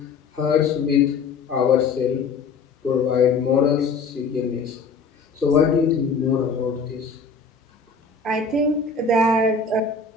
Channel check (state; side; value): quieter; right; 4.7 dB